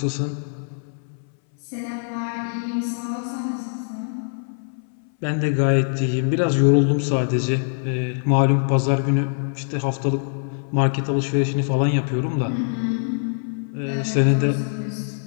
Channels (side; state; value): right; silent; 61 dB below the other